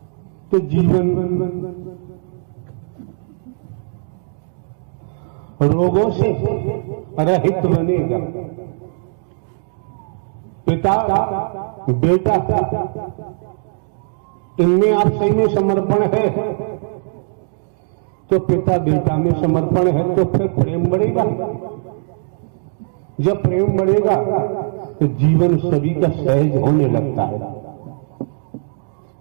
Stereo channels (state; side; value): silent; left; 66 dB below the other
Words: तो जीवन रोगों से रहित बनेगा। पिता बेटा इनमें आप सही में समर्पण है तो पिता बेटा में समर्पण है तो फिर प्रेम बढ़ेगा। जब प्रेम बढ़ेगा तो जीवन सभी का सहज होने लगता है।